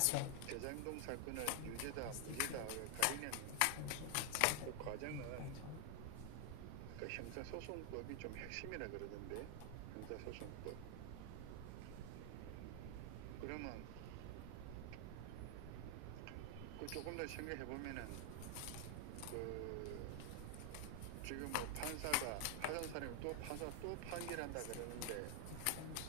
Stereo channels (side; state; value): both; different; correlation 0.00